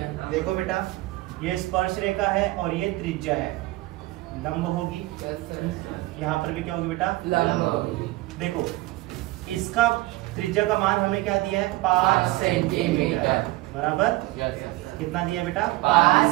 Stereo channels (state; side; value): quieter; left; 19.6 dB